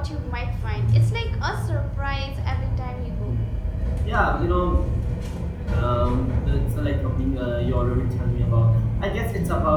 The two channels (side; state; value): both; identical; correlation 1.00